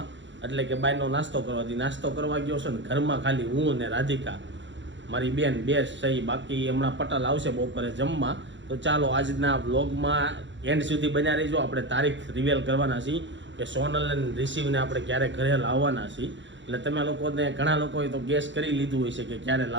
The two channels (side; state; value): left; late; 0.54 ms